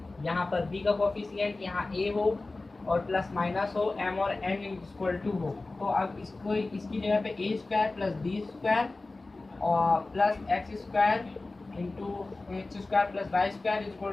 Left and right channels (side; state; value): right; quieter; 3.2 dB